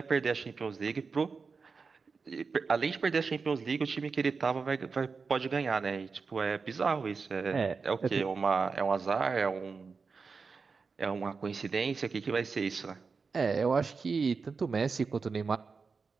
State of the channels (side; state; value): left; quieter; 4.9 dB